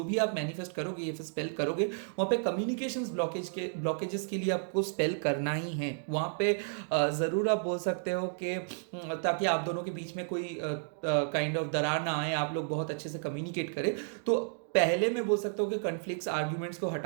भी आप मैनिफेस्ट करोगे या फिर स्पेल करोगे, वहाँ पे कम्युनिकेशंस ब्लॉकेजेस के लिए आपको स्पेल करना ही है। वहाँ पे ज़रूर आप बोल सकते हो कि ताकि आप दोनों के बीच में कोई काइंड ऑफ दरार ना आए, आप लोग बहुत अच्छे से कम्युनिकेट करें। तो पहले मैं बोल सकता हूँ कि कॉन्फ्लिक्ट्स आर्ग्यूमेंट्स को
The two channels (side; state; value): left; silent; digital silence